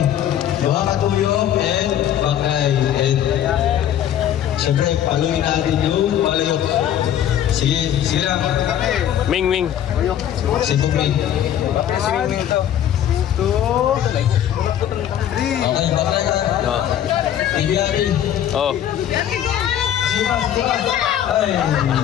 buha katuyong and bakay. And siyempre, paluin natin yung palayok. Sige lang. Ming. Sige, Ming. Okay, bakay ka. Ibiari. Oh. Ay.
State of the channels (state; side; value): quieter; right; 10.6 dB